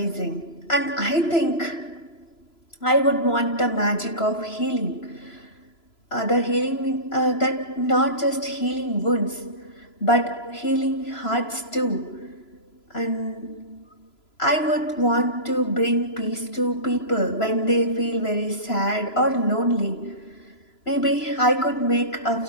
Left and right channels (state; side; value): late; right; 3.0 ms